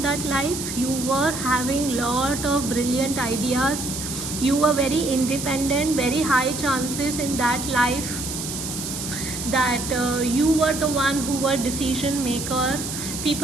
that life. You were having lot of brilliant ideas. You were very independent. Very high chances in that life that you were the one who were decision maker.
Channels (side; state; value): right; noise; hiss, 6 dB below the sound